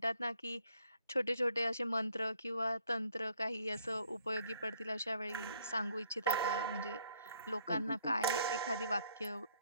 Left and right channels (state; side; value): inverted; both; correlation -0.66